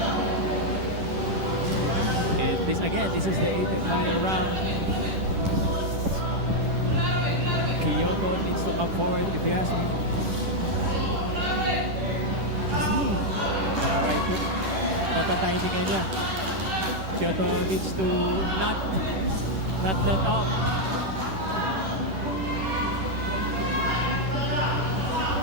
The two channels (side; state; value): left; late; 10 ms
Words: And this is the 8th and final round. Kyoto needs to come forward if you ask me. Right hook. Nata-timing niya. Kyoto needs to not let up.